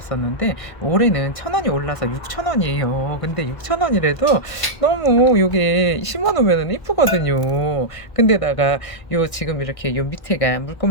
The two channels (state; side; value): late; right; 1.5 ms